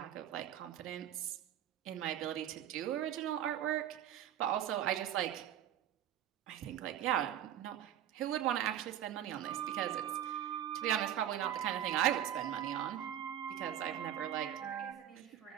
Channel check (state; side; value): quieter; left; 10.9 dB